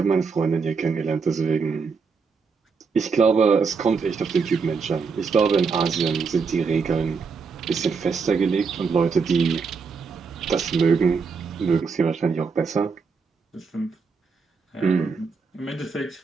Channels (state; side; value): quieter; left; 5.1 dB